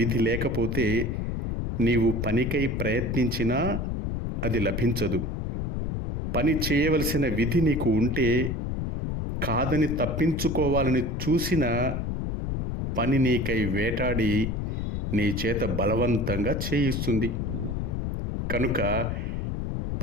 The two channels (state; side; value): noise; left; rumble, 2 dB below the sound